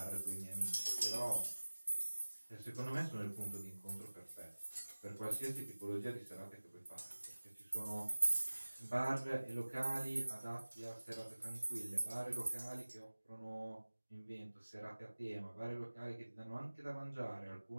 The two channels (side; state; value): both; inverted; correlation -1.00